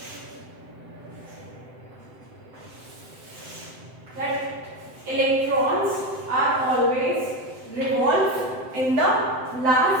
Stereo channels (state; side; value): late; left; 7.8 ms